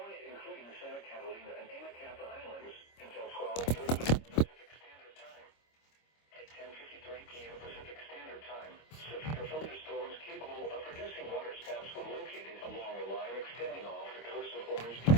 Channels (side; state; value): right; late; 25 ms